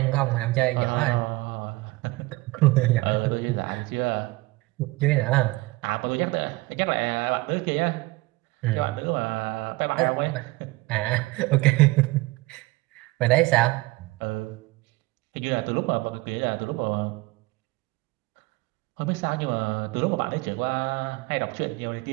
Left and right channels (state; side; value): quieter; left; 22.1 dB